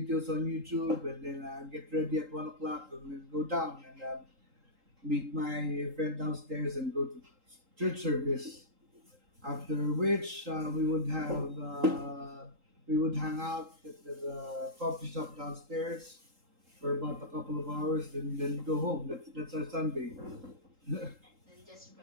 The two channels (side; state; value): left; late; 3.8 ms